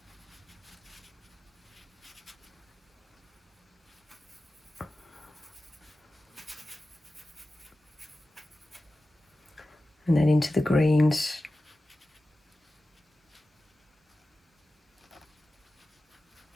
And then into the greens.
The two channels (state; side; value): normal; both; correlation 0.94